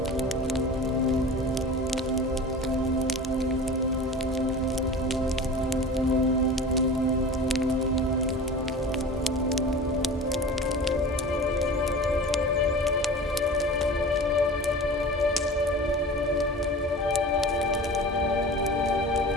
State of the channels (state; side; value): normal; both; correlation 0.36